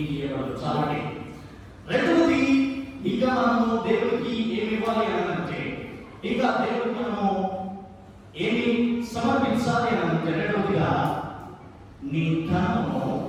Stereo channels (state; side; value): identical; both; correlation 1.00